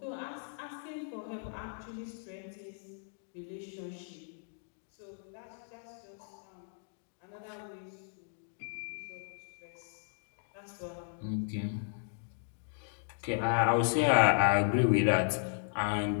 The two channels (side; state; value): right; silent; digital silence